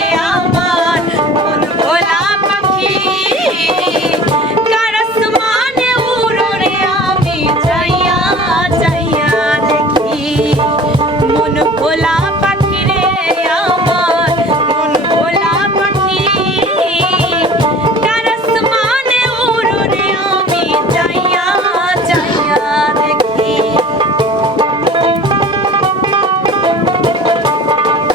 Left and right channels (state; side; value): normal; both; correlation 0.43